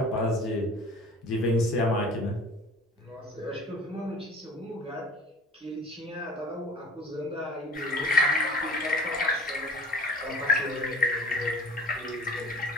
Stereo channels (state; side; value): normal; both; correlation 0.45